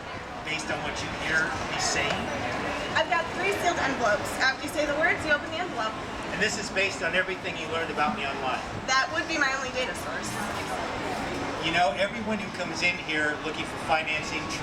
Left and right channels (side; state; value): both; identical; correlation 1.00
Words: based on what you hear me saying? I've got 3 sealed envelopes. After you say the words, you open the envelope. And this is based on everything you learned about me online. That would be my only data source. You know, everyone who comes in here looking for financing